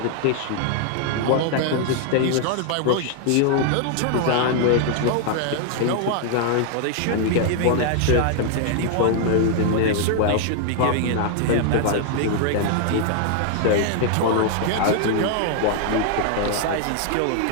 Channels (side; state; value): both; different; correlation 0.00